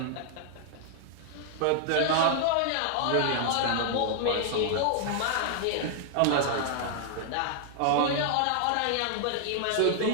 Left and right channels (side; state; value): both; different; correlation -0.01